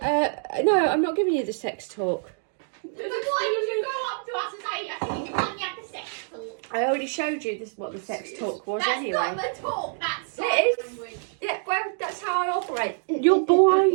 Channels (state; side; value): silent; left; digital silence